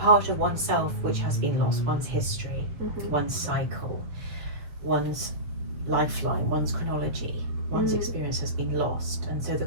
of oneself which has been lost, one's history, one's cycle, one's lifeline, one's chronology, one's experience has been lost. And so the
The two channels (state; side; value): late; left; 6.9 ms